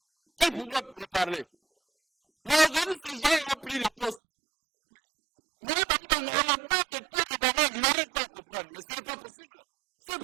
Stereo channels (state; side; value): drops out; left; at 4.2 s